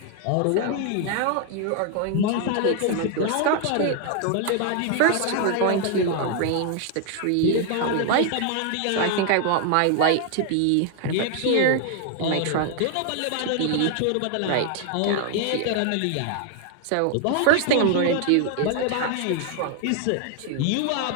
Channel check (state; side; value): different; both; correlation 0.00